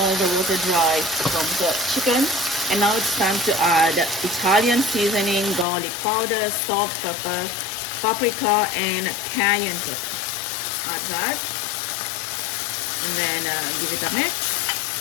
the water dry from the chicken. And now it's time to add Italian seasoning, garlic powder, salt, pepper, paprika, and cayenne pepper. Add that, and then give it a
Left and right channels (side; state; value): right; drops out; at 5.7 s